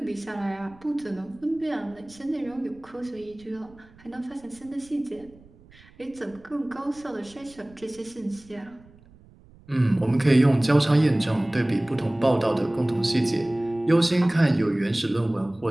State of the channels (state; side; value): noise; right; rumble, 26 dB below the sound